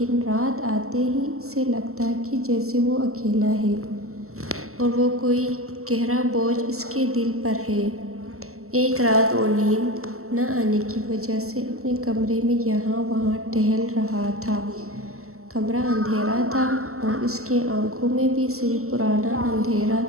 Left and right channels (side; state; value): left; late; 0.63 ms